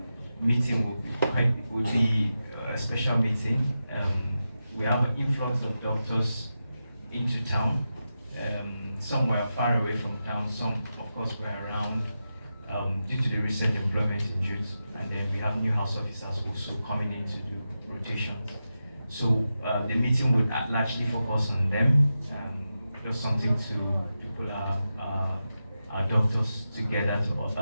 meeting will be a special meeting. We have an influx of doctors into town. Some were far away from town, some of course were around due to the recent employment in youth, and then we have new house officers also coming in to do rotations. So the meeting would largely focus on them, just something to pull our doctors together to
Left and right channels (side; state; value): both; inverted; correlation -0.90